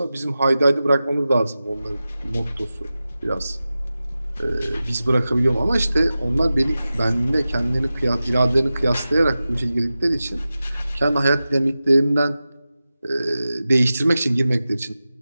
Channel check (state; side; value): inverted; both; correlation -0.94